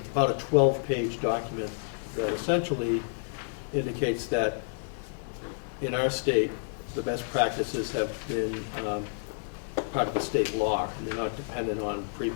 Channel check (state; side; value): silent; right; digital silence